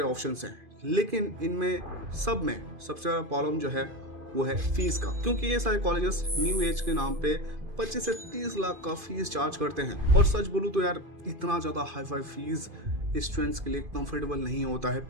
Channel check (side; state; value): left; late; 2.5 ms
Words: ऑप्शंस हैं। लेकिन इनमें सब में सबसे बड़ा प्रॉब्लम जो है वो है फीस का, क्योंकि ये सारे कॉलेजेस न्यू एज के नाम पे 25 से 30 लाख का फीस चार्ज करते हैं। और सच बोलूं तो यार इतना ज्यादा हाई फाई फीस स्टूडेंट्स के लिए कंफर्टेबल नहीं होता है